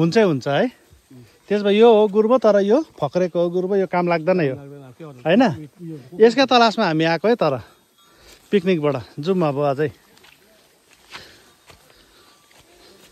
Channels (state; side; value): identical; both; correlation 1.00